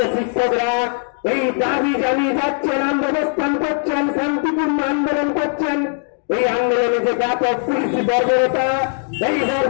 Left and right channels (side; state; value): right; silent; 59 dB below the other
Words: শিক্ষকরা এই দাবি জানিয়ে যাচ্ছেন, অবস্থান করছেন, শান্তিপূর্ণ আন্দোলন করছেন। এই আন্দোলনে যে ব্যাপক পুলিশি বর্বরতা, এই